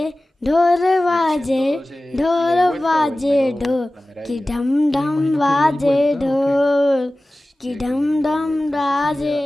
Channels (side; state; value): both; normal; correlation 0.97